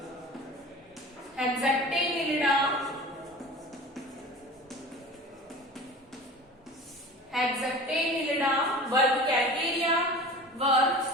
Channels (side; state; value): both; normal; correlation 0.38